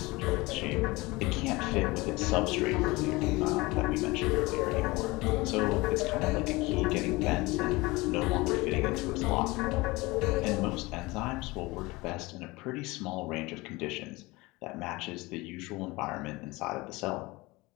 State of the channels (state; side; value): quieter; right; 22.4 dB